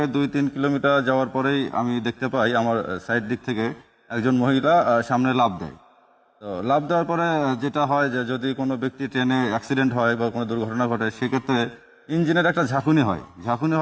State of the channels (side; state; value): both; identical; correlation 1.00